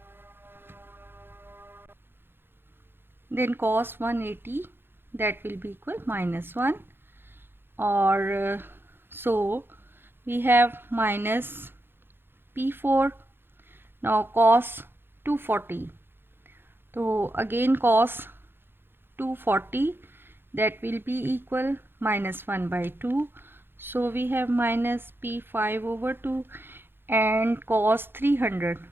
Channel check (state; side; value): late; left; 0.10 ms